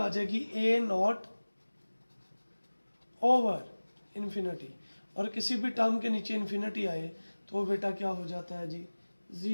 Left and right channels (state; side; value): inverted; both; correlation -1.00